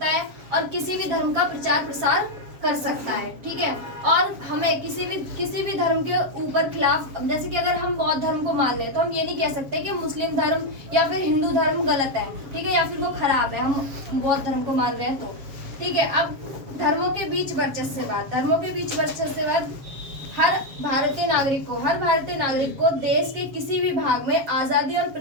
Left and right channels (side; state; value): left; late; 7.4 ms